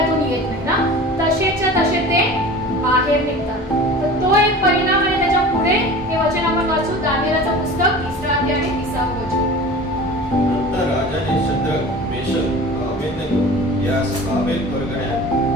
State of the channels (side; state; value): both; normal; correlation 0.38